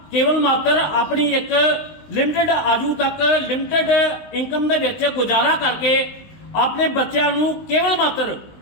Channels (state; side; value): late; right; 20 ms